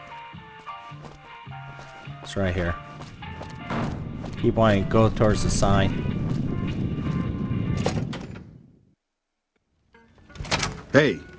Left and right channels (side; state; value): both; identical; correlation 1.00